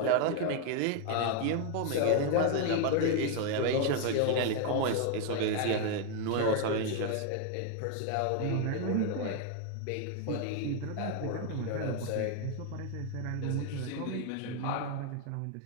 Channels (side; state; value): both; different; correlation 0.01